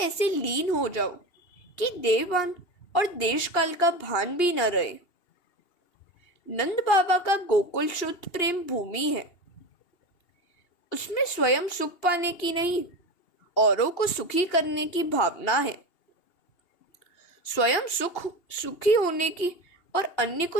लीन हो जाओ कि देवान और देश काल का भान भी न रहे। नंद बाबा का गोकुल शुद्ध प्रेम भूमि है। उसमें स्वयं सुख पाने की नहीं, औरों को सुखी करने की भावना है। स्वयं सुखी होने की और अन्य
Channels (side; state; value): right; late; 2.8 ms